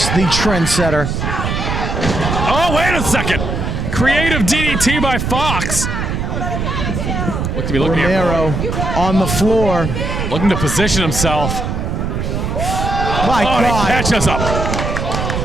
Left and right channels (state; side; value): noise; right; rumble, 2 dB below the sound